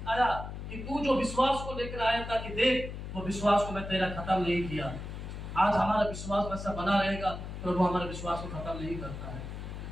कि तू जो विश्वास को लेकर आया था, कि देख वो विश्वास को मैं तेरा खत्म नहीं किया। आज हमारा विश्वास वैसा बना रहेगा, प्रभु हमारे विश्वास को खत्म नहीं करता है।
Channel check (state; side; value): noise; left; hum, 8 dB below the sound